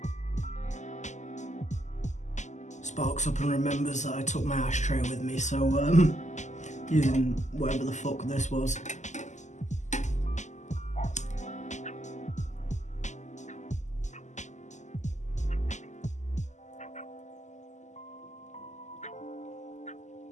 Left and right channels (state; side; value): late; right; 0.34 ms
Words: Sparks up and remembers that I took my ashtray with me, so using whatever the fuck this was.